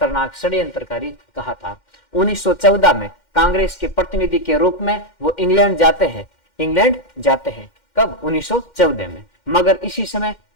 षड्यंत्रकारी कहा था। 1914 में कांग्रेस के प्रतिनिधि के रूप में वो इंग्लैंड जाते हैं। कब? 1914 में। मगर इसी समय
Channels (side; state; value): right; late; 2.1 ms